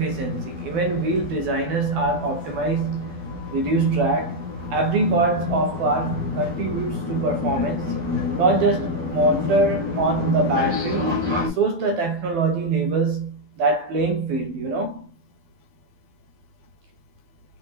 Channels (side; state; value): left; late; 12 ms